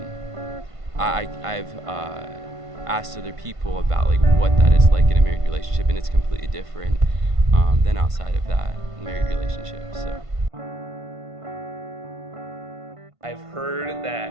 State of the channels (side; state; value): left; late; 1.5 ms